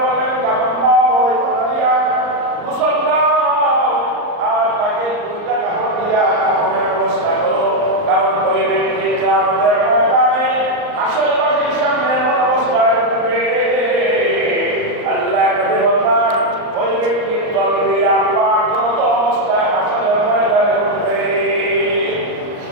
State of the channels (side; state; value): left; late; 39 ms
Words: বললেন, কাফন দাও, ওই কথা দিয়া গোসল দাও, আর তাকে দুইটা কাপড় দিয়া কাফনের ব্যবস্থা করো। কারণ ওই ব্যক্তিকে আমাদের ময়দানে আশেপাশের সামনে এমন অবস্থায় উঠবে, আল্লাহ নবী বললেন ওই ব্যক্তির তলবিয়া পাগলত অবস্থায় হাসরের ময়দানে উঠবে।